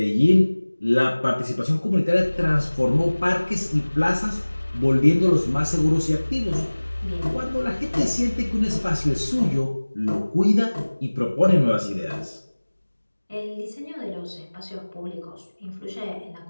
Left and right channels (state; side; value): inverted; both; correlation -1.00